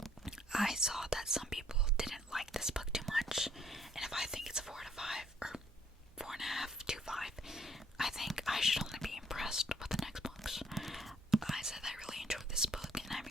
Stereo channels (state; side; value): normal; both; correlation 0.64